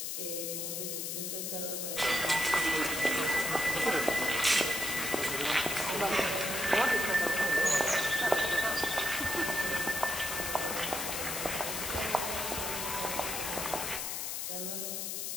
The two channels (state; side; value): noise; left; hiss, 3 dB below the sound